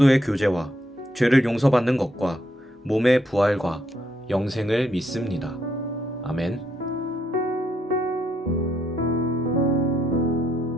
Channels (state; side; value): normal; both; correlation 0.75